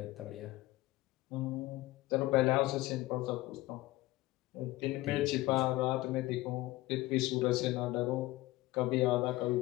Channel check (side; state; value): right; quieter; 18.6 dB